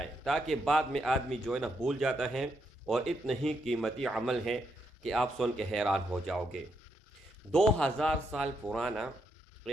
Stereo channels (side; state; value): both; normal; correlation 0.79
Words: تاکہ بعد میں آدمی جو ہے نا بھول جاتا ہے، اور اتنا ہی قیمتی عمل ہے کہ آپ سن کے حیران ہو جاؤ گے۔ 2000 سال پرانا